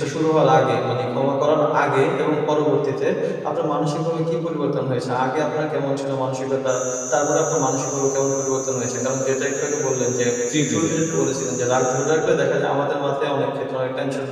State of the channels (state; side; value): identical; both; correlation 1.00